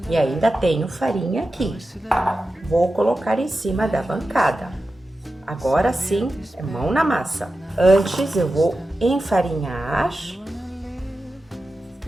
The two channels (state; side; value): normal; both; correlation 0.92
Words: e ainda tenho farinha aqui. Vou colocar em cima da bancada. Agora sim, é mão na massa. Antes eu vou enfarinhar